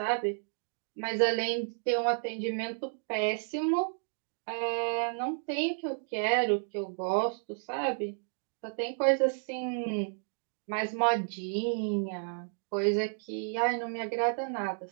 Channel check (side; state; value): left; silent; digital silence